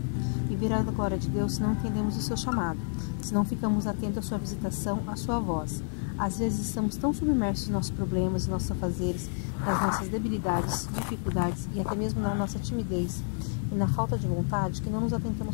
e ver a glória de Deus se não entendemos o seu chamado, se não ficamos atentos à sua visitação, à sua voz. Às vezes estamos tão submersos em nossos problemas, em nossos afazeres, nas nossas debilidades, dificuldades e até mesmo na nossa timidez e na falta de vontade que não nos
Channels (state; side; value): silent; right; 58 dB below the other